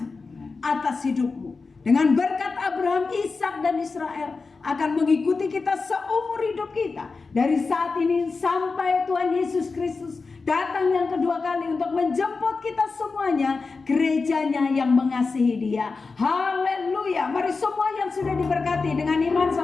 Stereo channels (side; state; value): right; quieter; 4.3 dB